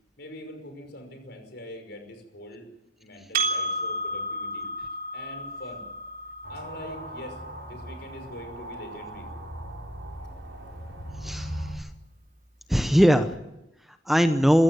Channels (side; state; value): both; normal; correlation 0.75